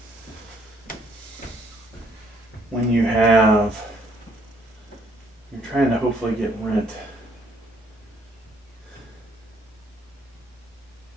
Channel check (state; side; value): normal; both; correlation 0.66